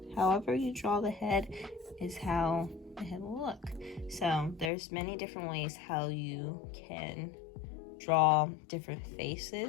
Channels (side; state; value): right; drops out; at 4.7 s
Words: However you draw the head is how the head will look. So there's many different ways how you can draw different